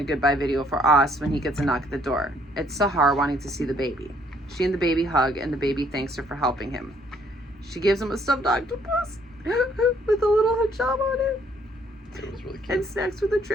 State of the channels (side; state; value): both; normal; correlation 0.65